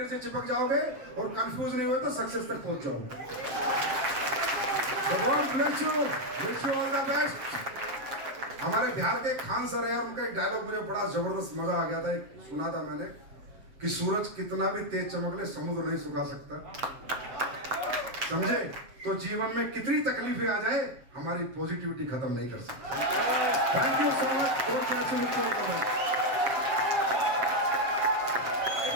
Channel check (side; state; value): left; late; 7.5 ms